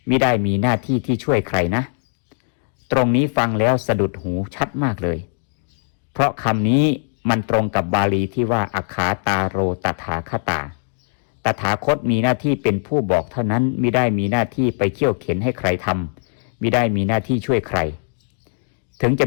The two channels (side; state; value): right; silent; digital silence